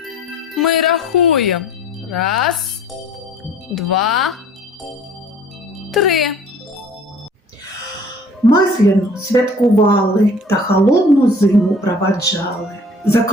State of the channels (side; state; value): both; normal; correlation 0.51